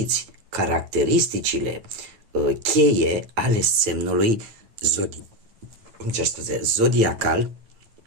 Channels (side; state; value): left; late; 9.0 ms